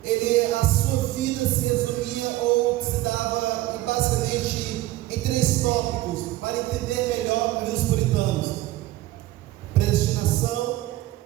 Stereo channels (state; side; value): quieter; left; 16.5 dB